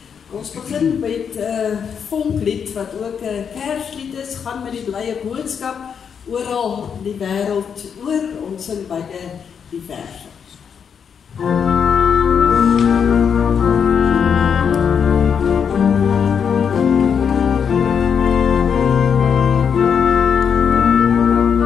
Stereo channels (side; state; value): right; quieter; 7.1 dB